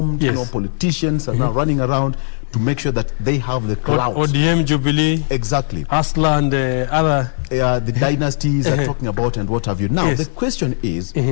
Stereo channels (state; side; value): silent; right; digital silence